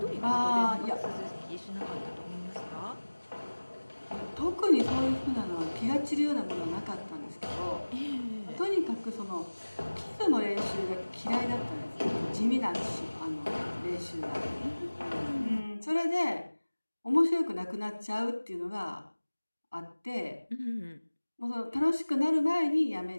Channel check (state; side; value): inverted; both; correlation -1.00